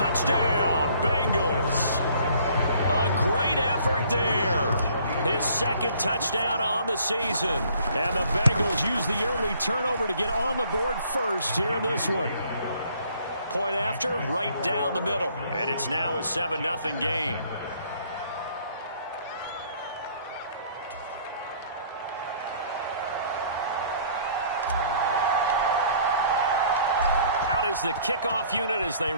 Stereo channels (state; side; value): inverted; both; correlation -0.58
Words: Bengals. A great effort there. His 2nd touchdown on the season. And the Bengals use the early turnover to get on the board first here in this one. Point after, right down the middle. And it's now a 7-0 game. Is the kickoff unit as they